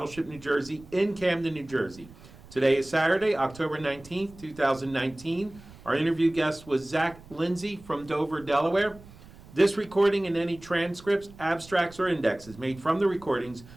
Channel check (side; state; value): right; noise; rumble, 21 dB below the sound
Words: New Jersey in Camden, New Jersey. Today is Saturday, October 19th, 2019. Our interview guest was Lindsay from Dover, Delaware. This recording and any transcripts, abstracts, or indexes made from the recordings